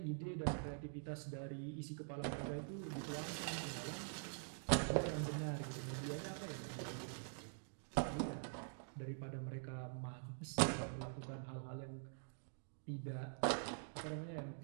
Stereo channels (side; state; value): left; silent; digital silence